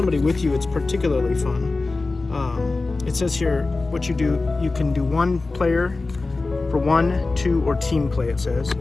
with you, it's particularly fun. It says here what you do. You can do one player for 1, 2, or team play, it says.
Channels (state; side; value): quieter; right; 3.5 dB